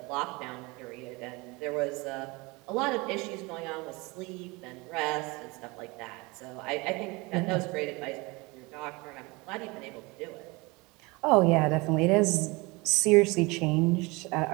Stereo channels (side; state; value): left; quieter; 25.2 dB